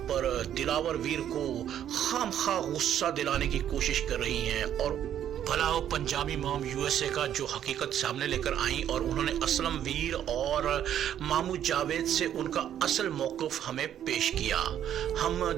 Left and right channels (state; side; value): quieter; left; 10.3 dB